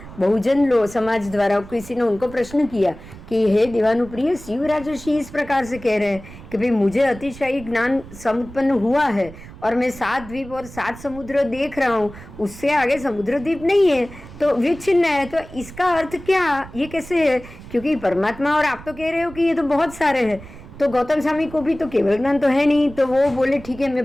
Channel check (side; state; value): right; noise; rumble, 17 dB below the sound